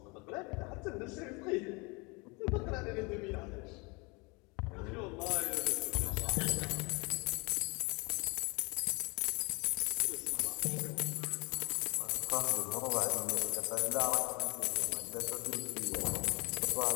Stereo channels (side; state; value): right; quieter; 28.3 dB